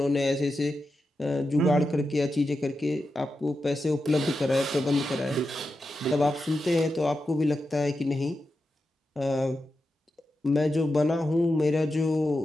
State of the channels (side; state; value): both; normal; correlation 0.89